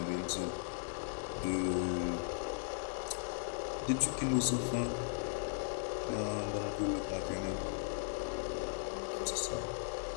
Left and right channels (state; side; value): silent; right; digital silence